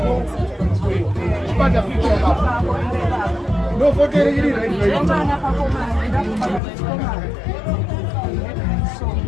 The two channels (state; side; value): drops out; right; at 6.6 s